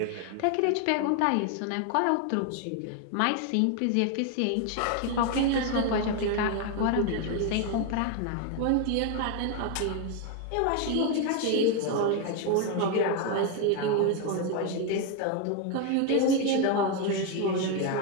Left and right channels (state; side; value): different; both; correlation 0.01